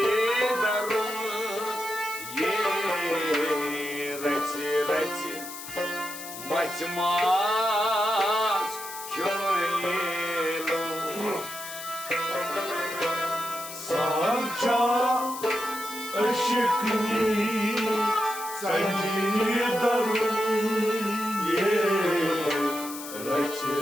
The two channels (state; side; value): noise; left; hiss, 11 dB below the sound